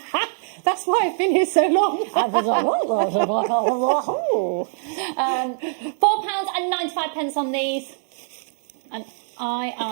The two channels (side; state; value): left; silent; 59 dB below the other